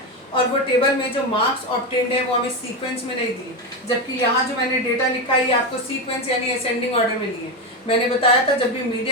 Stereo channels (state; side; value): normal; both; correlation 0.14